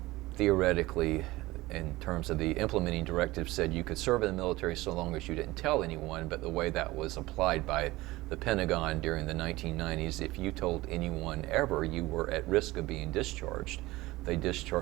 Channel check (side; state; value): left; quieter; 19.2 dB